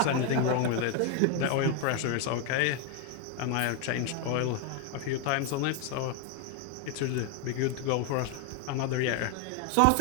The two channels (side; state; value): both; different; correlation 0.01